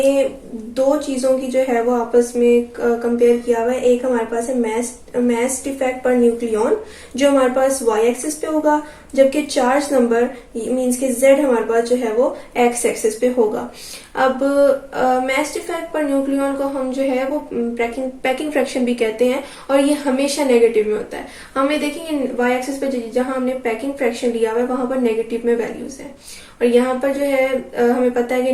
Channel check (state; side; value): identical; both; correlation 1.00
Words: 2 चीजों की जो है वो आपस में कंपेयर किया हुआ है। एक हमारे पास है मास डिफेक्ट पर न्यूक्लियन जो हमारे पास वाई एक्सिस पे होगा, जबकि चार्ज नंबर मींस के जेड हमारे पास जो है वो एक्स एक्सिस पे होगा। अब मास डिफेक्ट पर न्यूक्लियन को हम जो है वो पैकिंग फ्रैक्शन भी कहते हैं और ये हमेशा नेगेटिव में होता है। हमें देखेंगे वाई एक्सिस पे जहां हमने पैकिंग फ्रैक्शन लिया हुआ है वहां पर नेगेटिव में वैल्यूज है और यहाँ पर जो है हमें पता है कि